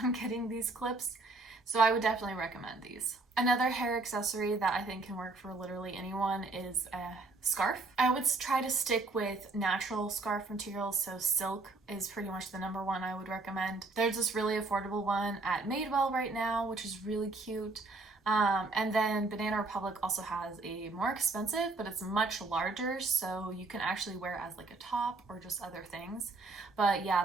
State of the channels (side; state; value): left; quieter; 3.4 dB